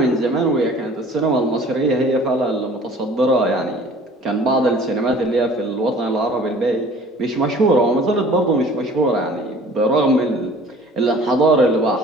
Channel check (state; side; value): normal; both; correlation 0.49